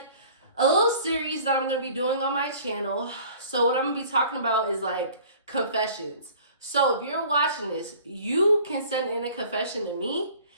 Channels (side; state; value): both; inverted; correlation -0.49